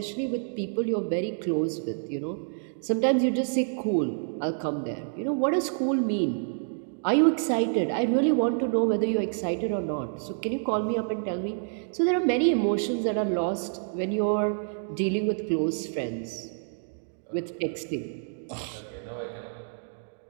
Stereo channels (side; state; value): left; silent; digital silence